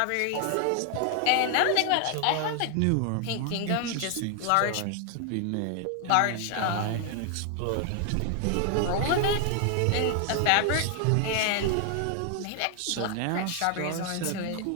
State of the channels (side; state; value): both; different; correlation 0.00